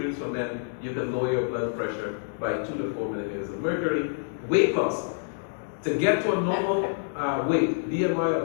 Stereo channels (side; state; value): right; silent; digital silence